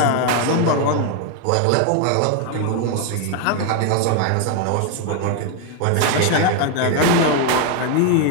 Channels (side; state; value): both; different; correlation 0.01